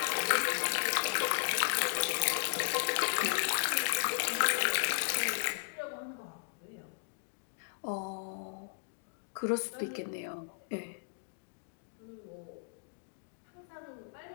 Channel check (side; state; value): right; silent; digital silence